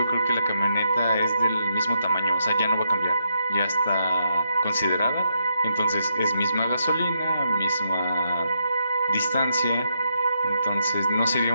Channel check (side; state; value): both; inverted; correlation -0.79